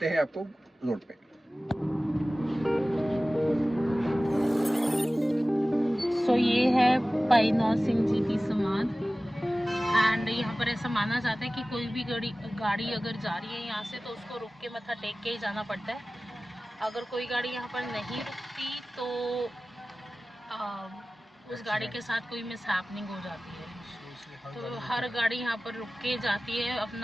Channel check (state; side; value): normal; both; correlation 0.97